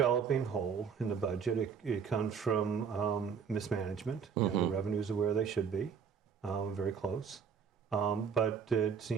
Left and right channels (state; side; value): quieter; left; 6.6 dB